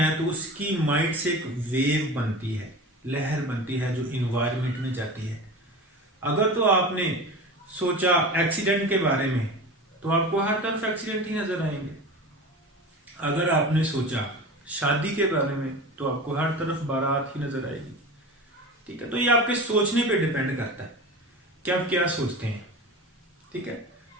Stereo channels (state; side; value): normal; both; correlation 0.32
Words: तो उसकी माइंड से एक वेव बनती है, लहर बनती है जो इन्वायरमेंट में जाती है। अगर तो आपने सोचा एक्सीडेंट के बारे में तो आपको हर तरफ एक्सीडेंट ही नजर आएंगे। अगर आपने सोचा शादी के बारे में तो आपको हर तरफ बारात ही नजर आएगी। ठीक है, तो ये आपके सोचने पे डिपेंड करता है कि आप क्या सोचते हैं। ठीक है,